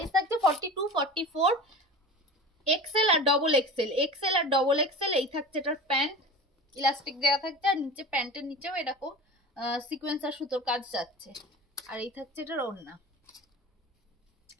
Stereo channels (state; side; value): normal; both; correlation 0.34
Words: থাকছে 42, 44, এক্সেল আর ডবল এক্সেল, এক্সেল আর ডবল এক্সেল। এই থাকছে এটার প্যান্ট, ইলাস্টিক দেওয়া থাকছে, আর নিচে প্যান্টের নিচেও এরকম সিকোয়েন্স আর সুতোর কাজ যাচ্ছে। আর এই থাকছে এটার ওড়না।